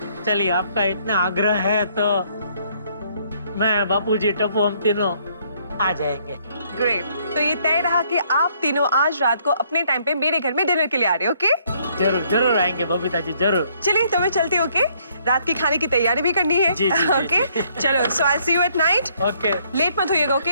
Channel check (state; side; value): inverted; both; correlation -0.67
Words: चलिए, आपका इतना आग्रह है तो मैं, बापूजी, टप्पू, हम तीनों आ जाएंगे। ग्रेट, तो ये तय रहा कि आप तीनों आज रात को अपने टाइम पे मेरे घर में डिनर के लिए आ रहे हो, ओके? जरूर जरूर आएंगे बबीता जी, जरूर। चलिए तो मैं चलती हूँ, ओके? रात की खाने की तैयारी भी करनी है। जी, जी, जी, ओके चलो, so I see you at night. Okay. Late मत होइएगा,